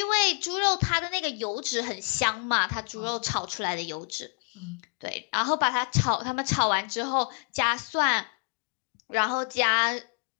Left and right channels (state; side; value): quieter; right; 39.5 dB